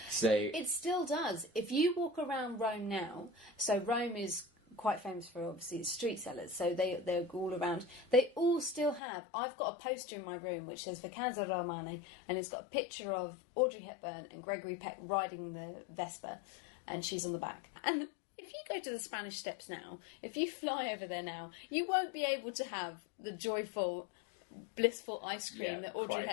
So It still does. If you walk around Rome now, so Rome is quite famous for obviously its street sellers, so they're all around. They all still have. I've got a poster in my room which says Vacanza Romane, and it's got a picture of Audrey Hepburn and Gregory Peck riding the Vespa, and she's on the back. And if you go to the Spanish Steps now, if you fly over there now, you won't be able to have the joyful, blissful ice cream that Audrey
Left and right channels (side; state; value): right; drops out; at 9.0 s